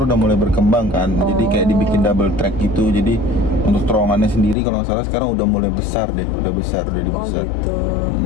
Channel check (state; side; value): drops out; right; at 4.5 s